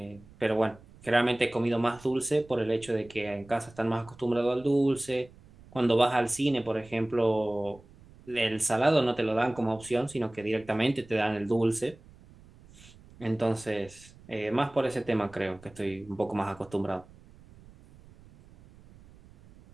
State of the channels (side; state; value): right; noise; rumble, 23 dB below the sound